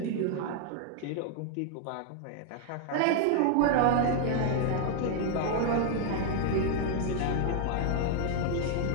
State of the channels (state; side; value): different; both; correlation 0.00